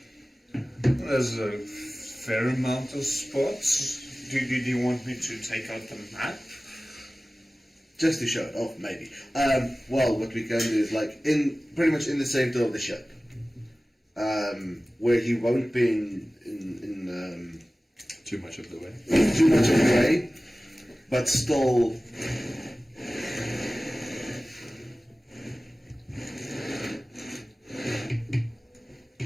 There's a fair amount of spots. Do you want me to take out the map? Just to show it off, maybe. Well, what we can do is like pretty much in the center of the ship, where he won't be in Too much of the way. too much of the way, but still.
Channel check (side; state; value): both; normal; correlation 0.97